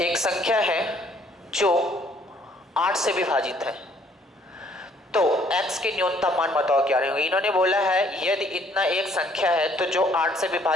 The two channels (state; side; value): normal; both; correlation 0.63